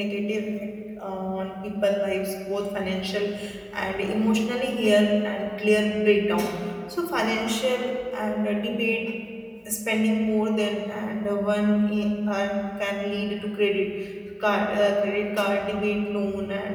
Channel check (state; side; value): identical; both; correlation 1.00